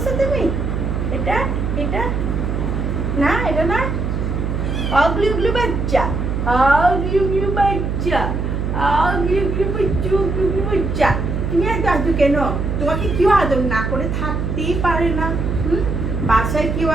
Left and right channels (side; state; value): right; noise; hum, 1 dB below the sound